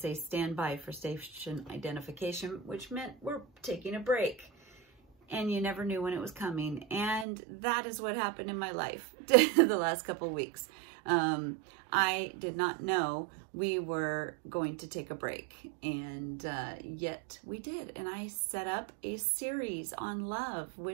stand by for station identification, which meant we're taking a break. And you never knew when it was coming. And that is what happened in my life the last couple of weeks. I did not know we were going to take a break, and yet we did. And I set up a series on love,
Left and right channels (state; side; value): drops out; left; at 7.2 s